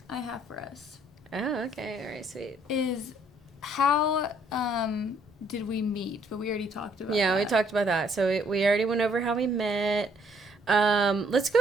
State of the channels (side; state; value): both; normal; correlation 0.66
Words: have for us. Oh, okay. All right, sweet. Is how did we meet? But we already talked about that. We talked about that. So we already went over how we met. Let's go